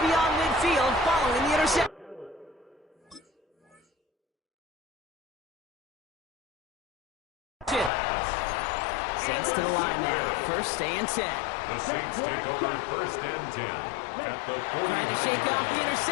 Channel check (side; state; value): right; drops out; at 7.9 s